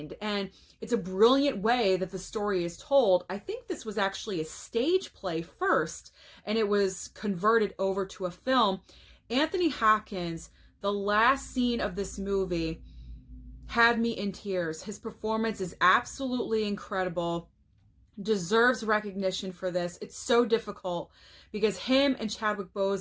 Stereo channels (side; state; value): both; identical; correlation 1.00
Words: and it's a brilliant way that the story is told. I think this was actually a stage play first, and it was converted over to a film. Anthony Hopkins, the last scene of this movie had me in tears. His performance is absolutely incredible. Deserves recognition for this. It's so difficult because him and Chadwick